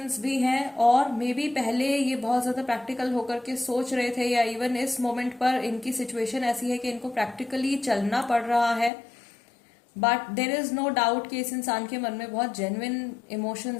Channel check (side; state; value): right; drops out; at 8.9 s